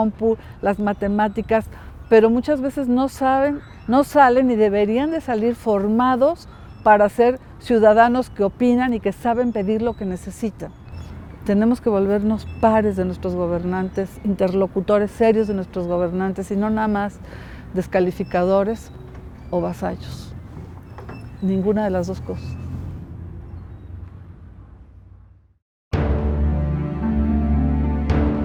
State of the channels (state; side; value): identical; both; correlation 1.00